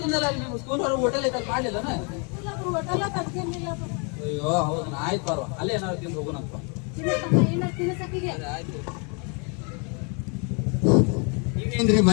ಅಲ್ಲಿ ನಿಮ್ಮ ಸ್ಕೂಲ್ ಹೊರಗೆ ಹೋಟೆಲ್ ಐತಲ್ಲಿ ಮಾಡ್ಲಿಲ್ಲನ? ಅಯ್ಯೋ ಹೌದನ, ಆಯ್ತು ಬಾರ್ವಾ ಅಲ್ಲೇ ಏನಾದ್ರು ತಿಂದು ಹೋಗೋಣಪ್ಪ. ಆಯ್ತು. ಈಗೇನ್ರಿ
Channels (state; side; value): quieter; right; 35.3 dB